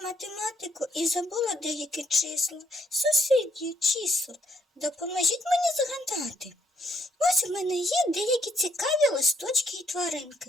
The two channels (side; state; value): both; normal; correlation 0.71